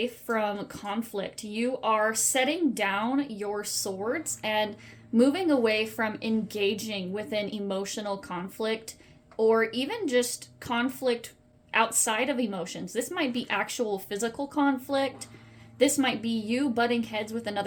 from conflict. You are setting down your swords and moving away from engaging within emotional conflict or even just conflict outside of emotions. This might be actual physical conflict. This might be you butting heads with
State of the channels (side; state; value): both; identical; correlation 1.00